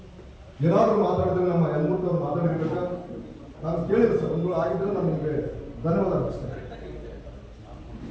ಏನಾದರೂ ಮಾತಾಡಿದ್ರೆ ನಮ್ಮ ಯಲ್ಮೂರ್ತಿ ಮಾತಾಡಿರ್ಬೇಕಾ, ನಾನು ಕೇಳಿದೆ ಸರ್, ಒಂದು ಆಗಿದ್ರೆ ನಾನು ನಿಮಗೆ ಧನ್ಯವಾದ ಅರ್ಪಿಸ್ತೇನೆ.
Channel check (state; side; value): identical; both; correlation 1.00